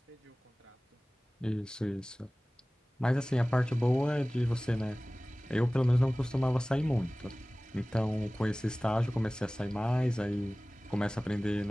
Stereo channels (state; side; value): normal; both; correlation 0.98